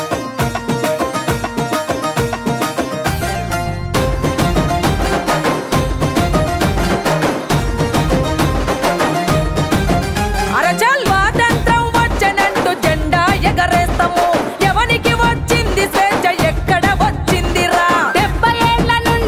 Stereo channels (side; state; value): both; identical; correlation 1.00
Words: అరచల్ స్వాతంత్రం వచ్చనంటూ జెండా ఎగరేస్తాము ఎవనికి వచ్చింది స్వేచ్ఛ ఎక్కడ వచ్చిందిరా 70 ఏళ్ల